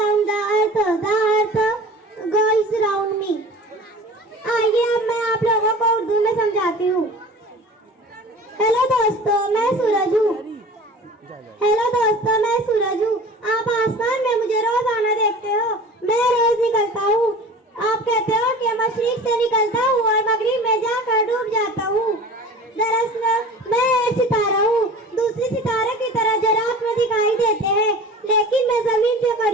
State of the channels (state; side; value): normal; both; correlation 0.40